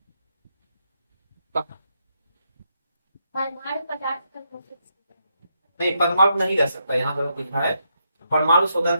नहीं, परमाणु नहीं रह सकता, यहाँ पर लिखा है परमाणु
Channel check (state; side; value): inverted; both; correlation -0.80